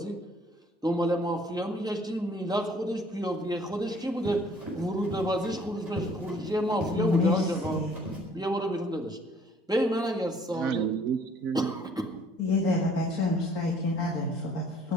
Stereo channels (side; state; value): both; normal; correlation 0.59